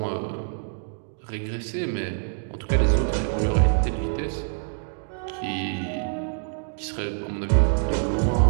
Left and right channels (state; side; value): silent; left; digital silence